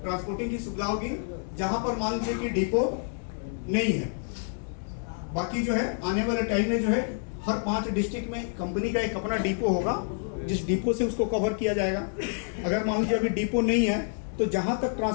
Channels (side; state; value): right; silent; 59 dB below the other